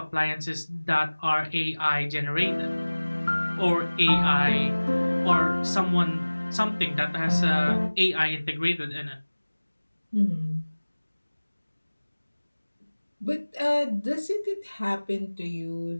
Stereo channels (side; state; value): both; inverted; correlation -1.00